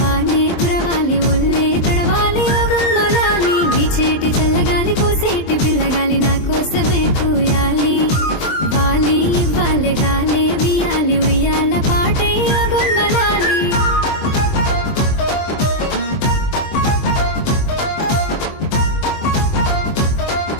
కురవాలి ఒళ్ళే తడవాలి గుమ్మలాలి వీచేటి చల్లగాలి కోసేటి పిల్లగాలి నా కోసమే కూయాలి వాలి వాళ్ళే గాలే వియాలి ఉయ్యాల పాటై గుమ్మలాలి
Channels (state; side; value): late; right; 23 ms